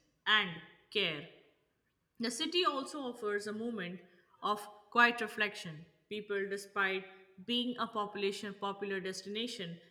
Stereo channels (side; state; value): both; identical; correlation 1.00